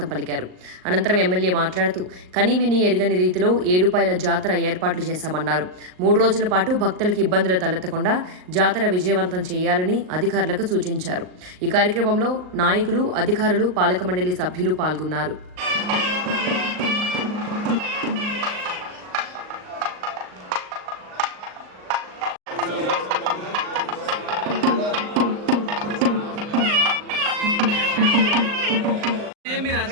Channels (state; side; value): late; left; 38 ms